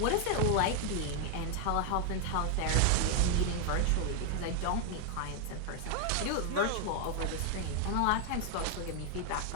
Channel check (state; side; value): different; both; correlation 0.00